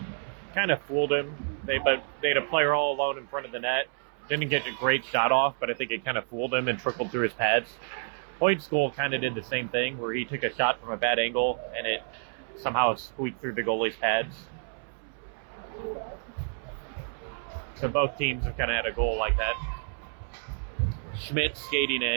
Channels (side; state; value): left; silent; 58 dB below the other